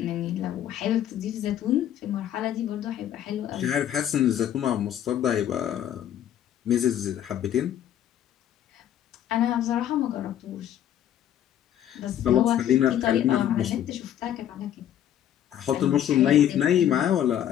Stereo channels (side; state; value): right; quieter; 10.8 dB